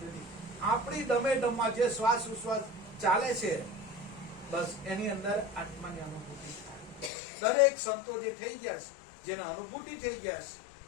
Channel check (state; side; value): drops out; right; at 7.1 s